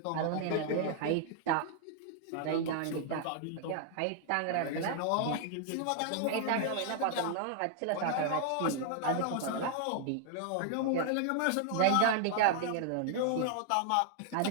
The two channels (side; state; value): both; different; correlation 0.00